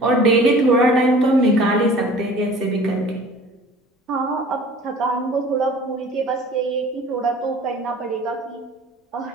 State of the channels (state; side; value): normal; both; correlation 0.46